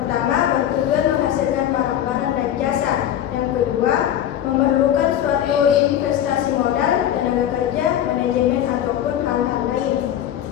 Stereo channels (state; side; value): quieter; right; 10.8 dB